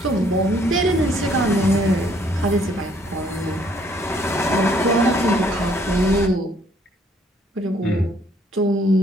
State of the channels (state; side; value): normal; both; correlation 0.64